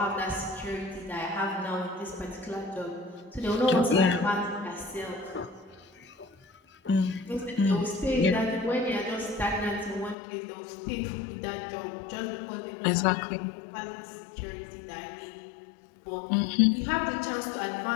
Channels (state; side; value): drops out; right; at 10.2 s